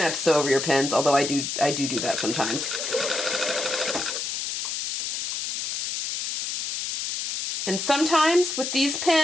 to sew over your pins, although I do that sometimes. And sometimes with these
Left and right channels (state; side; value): noise; left; hiss, 2 dB below the sound